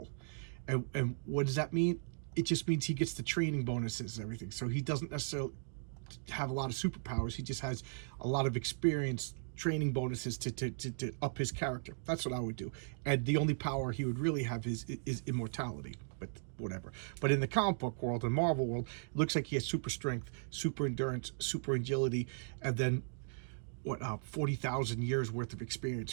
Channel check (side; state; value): left; silent; digital silence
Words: And what does that mean? It just means he gets the training bonuses and everything. So he doesn't necessarily have a lot of superpowers. He just has a lot of experience, training bonuses to up his character. That's what I would do. And the only power he would really have is immortality, but whatever. But in the comic book world and Marvel world, it looks like he has super strength, super endurance, super agility, and then 40,000 years worth of experience,